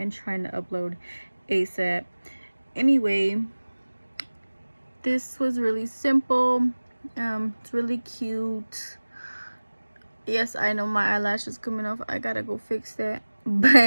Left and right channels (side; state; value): both; inverted; correlation -1.00